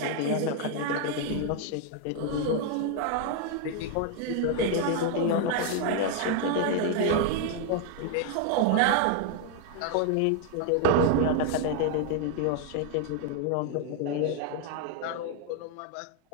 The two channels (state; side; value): different; both; correlation 0.00